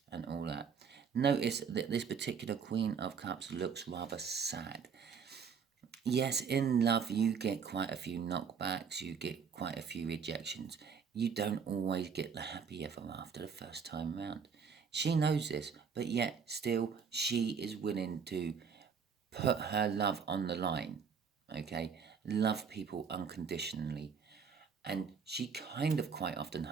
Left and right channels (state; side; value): quieter; left; 6.3 dB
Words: and all that. Notice that this particular Queen of Cups looks rather sad. Yes, in love you get quite a few knockbacks. You get quite a few rejections. You don't always get the happy ever after the first time round. She knows this, but yet still she is willing to put her love on the line, okay? Love people unconditionally. And she kind of quite often